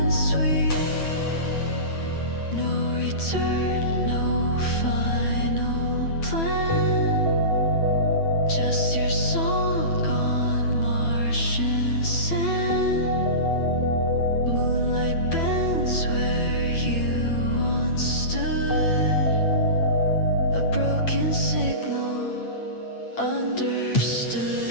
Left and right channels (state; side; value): late; right; 9.1 ms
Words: sweet. No return, no final plan. Just your song on Martian sand. Moonlight bends where you once stood. A broken signal understood.